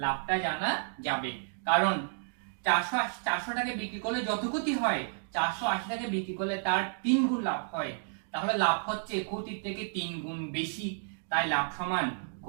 লাভটা জানা যাবে, কারণ 480 টাকা বিক্রি করলে যত ক্ষতি হয় 480 টাকা বিক্রি করলে তার 3 গুণ লাভ হয়, তাহলে লাভ হচ্ছে ক্ষতির থেকে 3 গুণ বেশি, তাই লাভ সমান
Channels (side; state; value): left; silent; digital silence